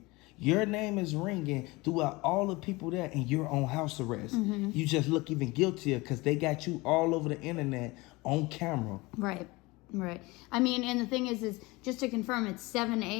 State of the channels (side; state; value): right; quieter; 23.1 dB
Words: Your name is ringing throughout all the people there, and you're on house arrest. You just look even guiltier because they got you all over the internet on camera. Right. Right. I mean, and the thing is just to confirm, it's 7